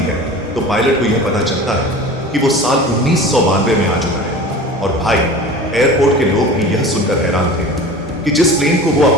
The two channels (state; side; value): normal; both; correlation 0.37